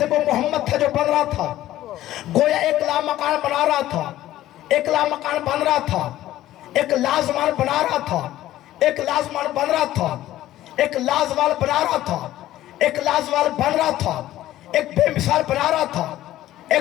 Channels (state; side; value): quieter; right; 14.2 dB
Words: وہ محمد تھا جو بن رہا تھا، گویا ایک لامکان بنا رہا تھا، ایک لامکان بن رہا تھا، ایک لازمان بنا رہا تھا، ایک لازمان بن رہا تھا، ایک لازوال بنا رہا تھا، ایک لازوال بن رہا تھا، ایک بے مثال بنا رہا تھا،